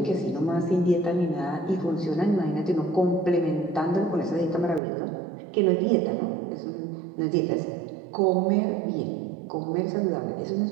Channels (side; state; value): left; drops out; at 4.8 s